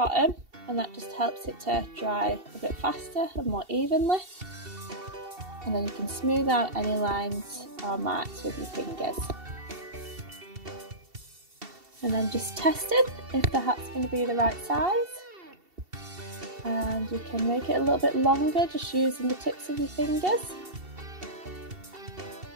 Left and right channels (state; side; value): late; left; 2.7 ms